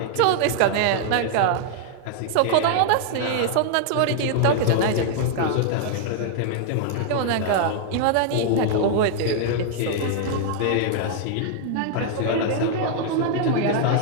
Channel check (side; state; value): both; different; correlation -0.01